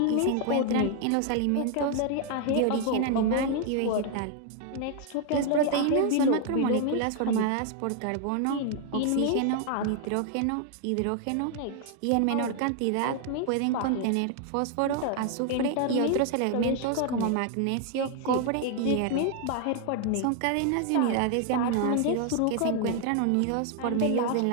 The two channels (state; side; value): different; both; correlation 0.00